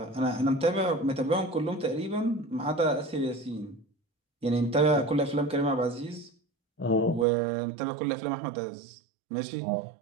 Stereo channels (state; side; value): drops out; left; at 7.2 s